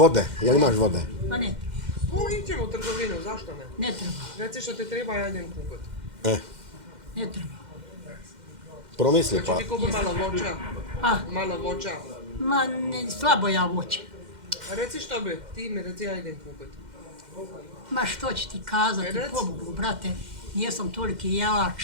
jel imaš vode? Ma ne treba, Iđemo u trgovinu, zašto ne? ne treba, Reci što ti treba, ja idem kupiti. ne treba. Promisli pa. Znači ti kupi malo voća, A, malo voća. ma ne, slabo ja voće. A reci što bi, ti mi reci, ja idem kupiti. Ma što će ti kazati, Reci. pobogu, brate, nijesam toliki jelač.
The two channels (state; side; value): late; left; 2.1 ms